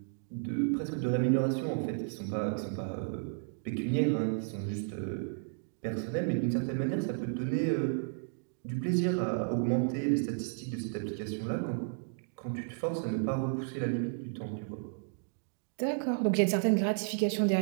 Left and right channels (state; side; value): silent; left; digital silence